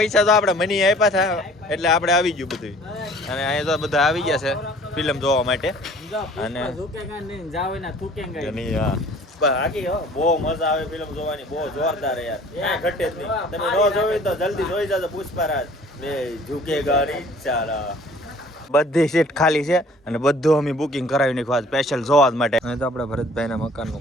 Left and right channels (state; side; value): normal; both; correlation 0.52